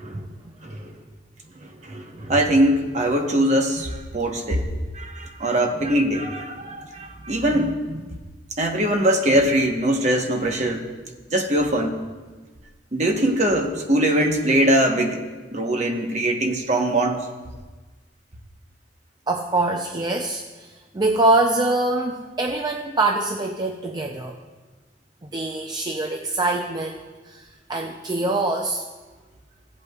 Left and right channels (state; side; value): normal; both; correlation 0.36